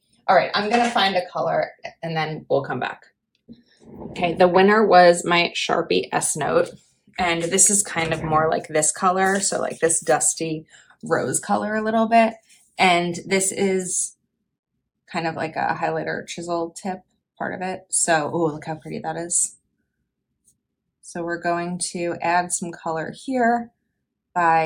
All right, I'm gonna find a color and then we'll come back. Okay, the winner was my Sharpie S-Note. And this is kind of more like this color. So like this dusty rose color a little bit. And this is kind of like a highlighter chisel tip part of it. So, oh, look how pretty that is. So we're going to add some color here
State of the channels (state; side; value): identical; both; correlation 1.00